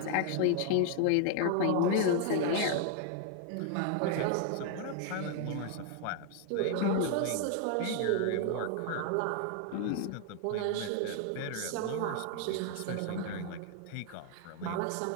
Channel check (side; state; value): both; different; correlation 0.00